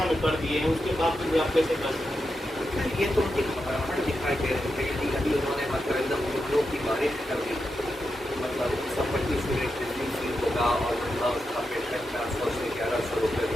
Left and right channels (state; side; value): normal; both; correlation 0.87